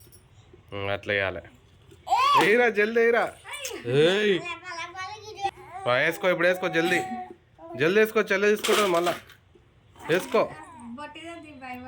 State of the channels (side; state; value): both; identical; correlation 1.00